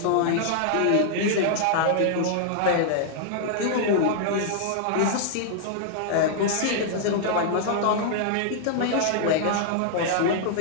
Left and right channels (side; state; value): both; different; correlation -0.01